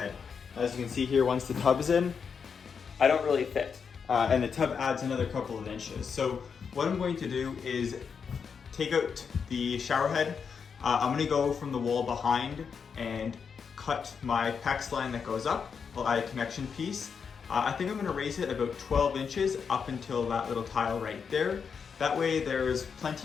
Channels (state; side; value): quieter; right; 6.3 dB